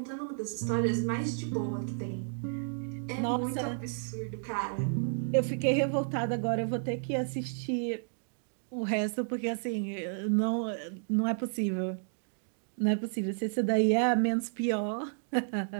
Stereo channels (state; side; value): silent; left; digital silence